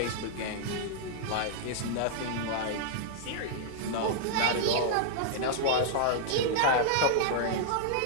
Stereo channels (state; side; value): different; both; correlation -0.01